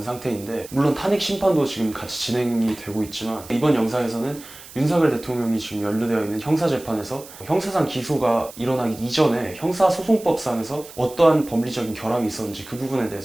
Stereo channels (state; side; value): noise; right; hiss, 18 dB below the sound